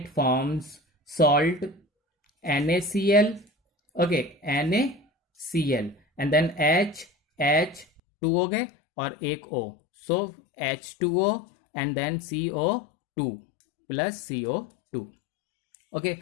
forms salt, NaCl. Okay, NaCl, and then H2 हो गए और एक O, so H2O and then CO2 plus CO2. Okay,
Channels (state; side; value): drops out; right; at 8.0 s